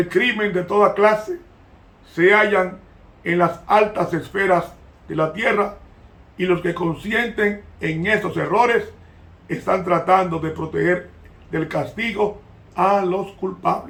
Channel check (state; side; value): identical; both; correlation 1.00